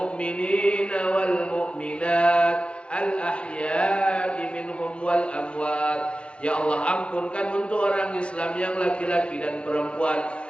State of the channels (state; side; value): late; right; 0.058 ms